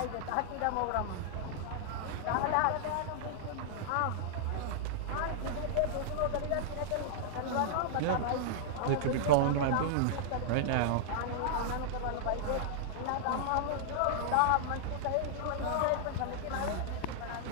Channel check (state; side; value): different; both; correlation -0.01